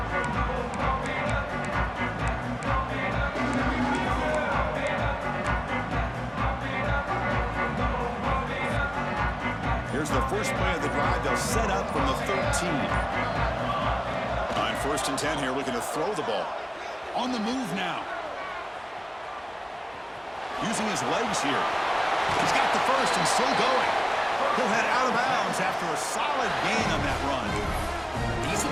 Here's the first play of the drive. They'll set up from the 13. On first and 10 here, looking to throw the ball. On the move now. Using his legs here. He's got the first and still going. He'll head out of bounds after a solid gain on that run. These are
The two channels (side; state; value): both; identical; correlation 1.00